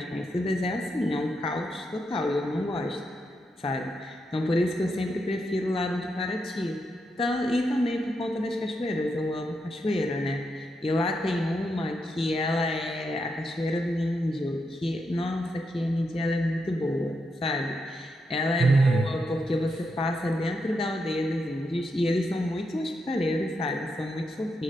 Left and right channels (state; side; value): normal; both; correlation 0.83